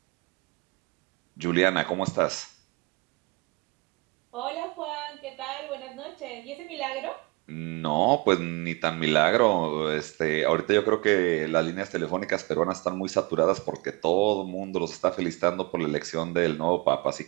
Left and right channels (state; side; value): quieter; left; 27.1 dB